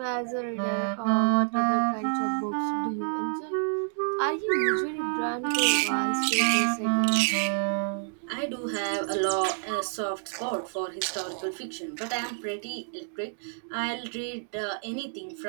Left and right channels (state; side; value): silent; left; digital silence